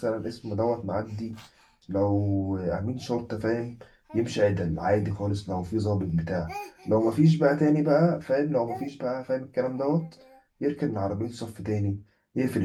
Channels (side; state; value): both; identical; correlation 1.00